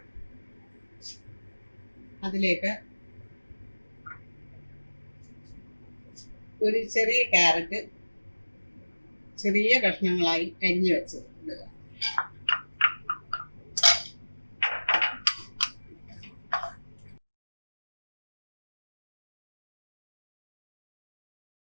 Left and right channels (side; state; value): both; inverted; correlation -1.00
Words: അതിലേക്ക് ഒരു ചെറിയ ക്യാരറ്റ് ചെറിയ കഷ്ണങ്ങളായി അരിഞ്ഞു വെച്ച് ഇടുക.